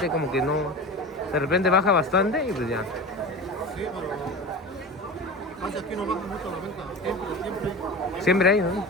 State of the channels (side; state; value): both; normal; correlation 0.30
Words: como que no... De repente baja bastante y pues ya. sí, pero... Casi aquí no baja mucho la venta. Siempre. Siempre hay, ¿no?